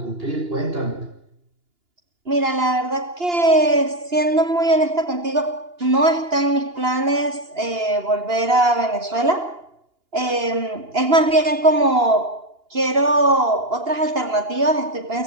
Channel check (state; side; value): late; left; 2.8 ms